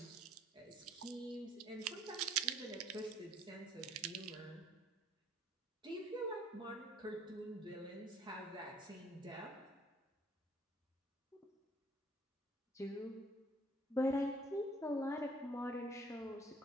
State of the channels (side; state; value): both; normal; correlation 0.59